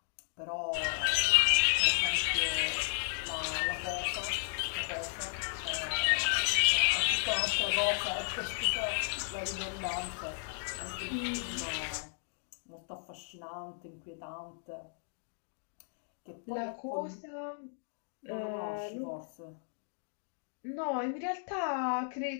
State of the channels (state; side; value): silent; right; digital silence